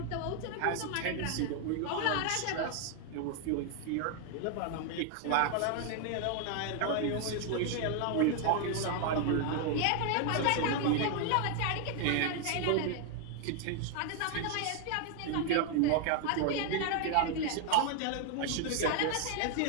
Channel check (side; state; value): both; different; correlation 0.00